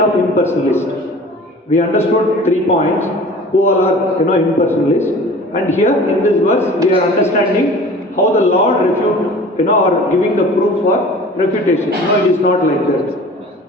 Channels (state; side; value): normal; both; correlation 0.43